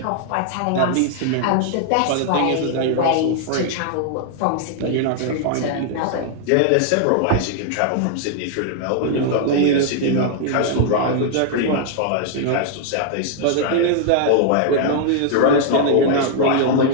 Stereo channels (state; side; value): different; both; correlation 0.00